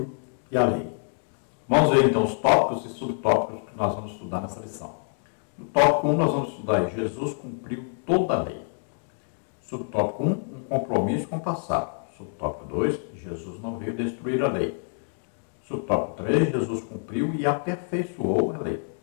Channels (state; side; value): silent; right; 61 dB below the other